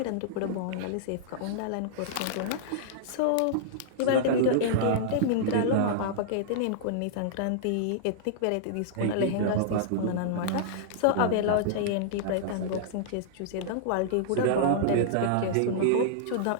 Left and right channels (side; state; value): both; different; correlation -0.02